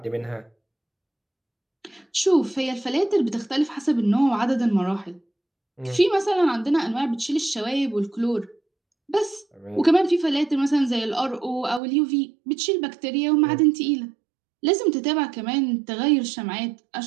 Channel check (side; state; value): left; drops out; at 11.8 s